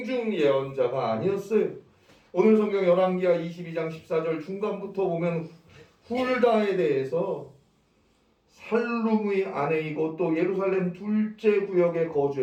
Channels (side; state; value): both; identical; correlation 1.00